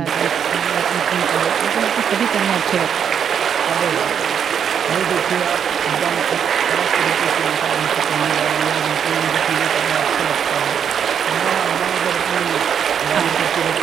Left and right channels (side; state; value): left; quieter; 7.9 dB